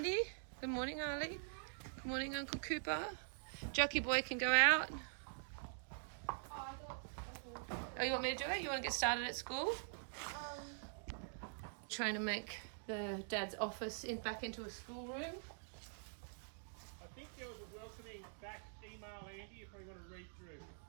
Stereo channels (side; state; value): left; silent; digital silence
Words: Good morning, Arlie. Good morning, Uncle Cooper. Jucky Boy can go out. Oh, you want me to do it? You want to get started at school? Trying to make the dad's office back into a schoolroom. I think there was a welcoming back email, Andy, if we want to read through.